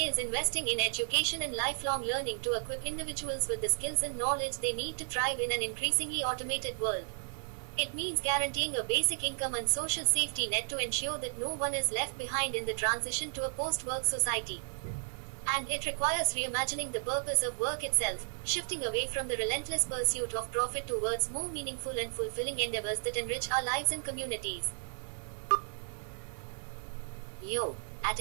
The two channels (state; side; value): silent; left; digital silence